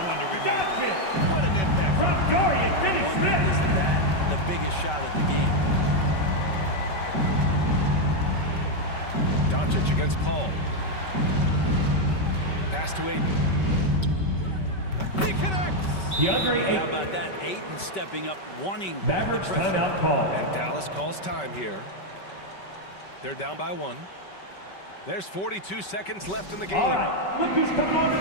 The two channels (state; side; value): late; right; 5.2 ms